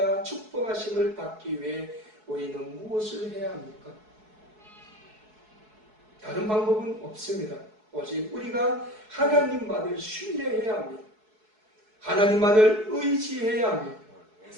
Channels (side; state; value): left; late; 4.7 ms